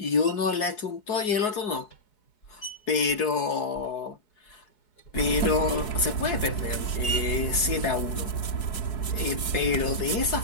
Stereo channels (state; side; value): late; right; 4.7 ms